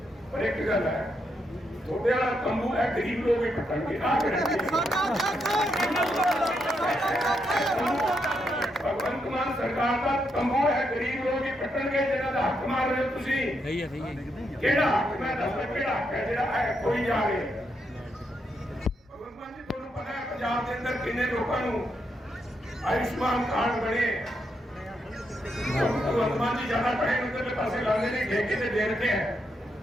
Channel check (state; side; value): normal; both; correlation 0.80